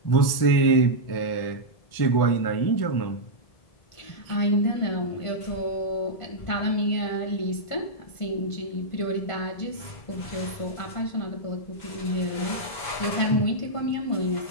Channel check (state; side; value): late; right; 1.7 ms